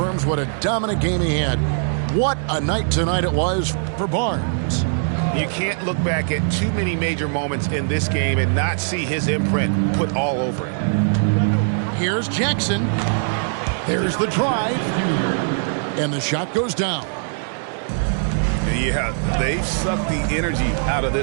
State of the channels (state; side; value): silent; left; digital silence